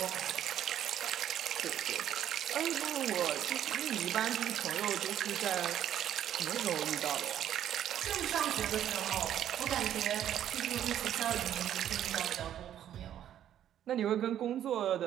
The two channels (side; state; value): left; quieter; 10.8 dB